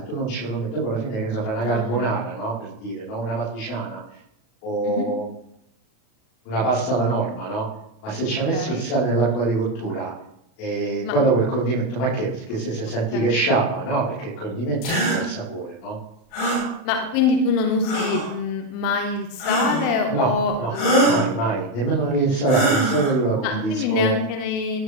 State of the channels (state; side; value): late; right; 39 ms